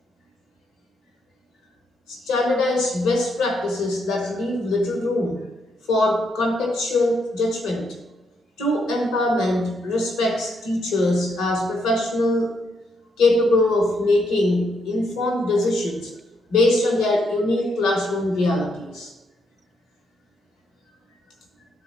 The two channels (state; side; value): normal; both; correlation 0.77